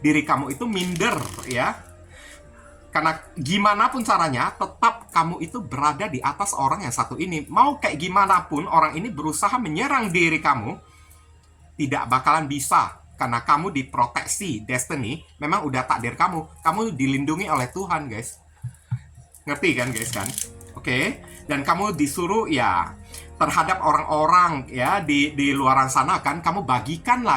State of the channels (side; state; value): both; identical; correlation 1.00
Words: diri kamu itu minder ya. Karena gimana pun caranya, tetap kamu itu berada di atas orang yang satu ini. Mau kayak gimana pun orang ini berusaha menyerang diri kamu, tidak bakalan bisa. Karena kamu diproteksi, destiny, memang udah takdir kamu. Kamu dilindungi oleh Tuhan, guys. Ngerti kan, guys kan? Oke. Dan kamu disuruh ya terhadap orang-orang ya di luaran sana kan, kamu